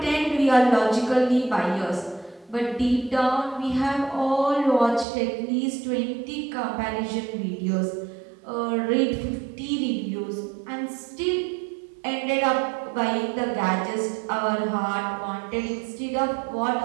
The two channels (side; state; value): left; drops out; at 5.1 s